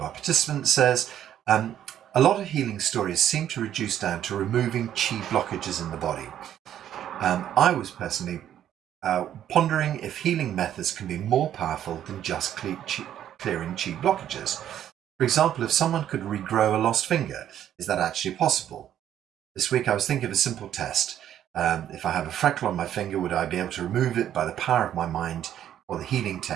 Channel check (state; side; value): quieter; left; 10.8 dB